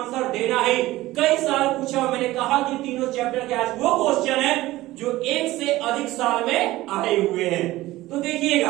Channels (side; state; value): left; quieter; 17.4 dB